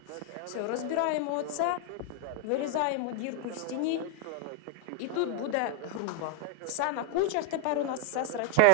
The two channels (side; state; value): both; different; correlation 0.00